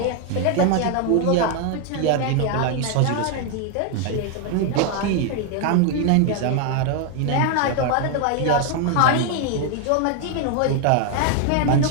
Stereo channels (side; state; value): both; different; correlation 0.01